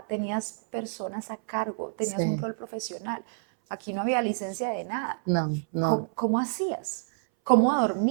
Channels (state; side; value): silent; left; 59 dB below the other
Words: tenías personas a cargo, tenías un Sí, rol profesional. Aquí no había licencia de nada. no. ¿Cómo hacías? ¿Cómo